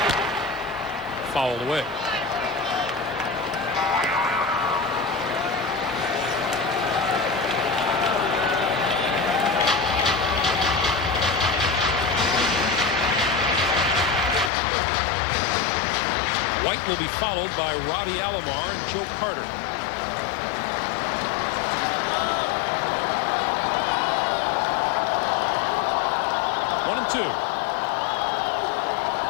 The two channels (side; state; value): right; drops out; at 14.5 s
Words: Fouled away. White will be followed by Robbie Alomar and Joe Carter. One and two.